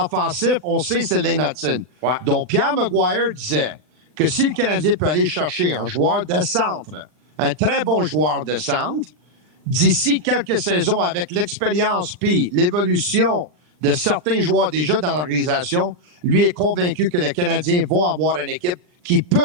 on sait, c'est Lane Hudson. Ouais. Donc, Pierre Maguire disait que si le Canadien peut aller chercher un joueur de centre, un très bon joueur de centre, d'ici quelques saisons, avec l'expérience puis l'évolution de certains joueurs déjà dans l'organisation, lui est convaincu que les Canadiens vont avoir une équipe qui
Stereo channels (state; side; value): late; left; 39 ms